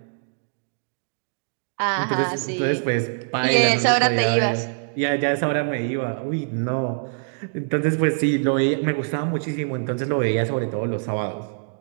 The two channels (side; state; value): left; silent; digital silence